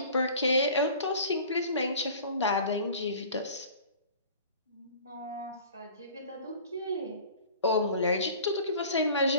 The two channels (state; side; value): inverted; both; correlation -0.44